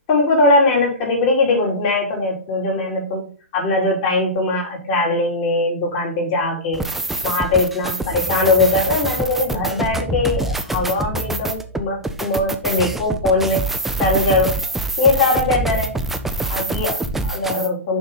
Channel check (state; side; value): normal; both; correlation -0.13